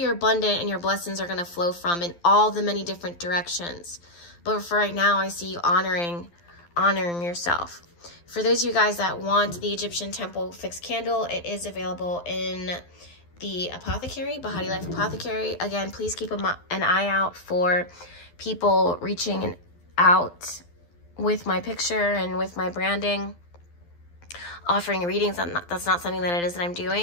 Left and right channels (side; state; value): right; late; 12 ms